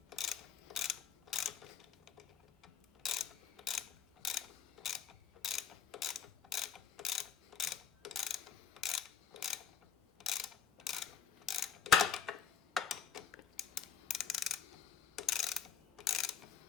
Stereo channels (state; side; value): quieter; right; 7.4 dB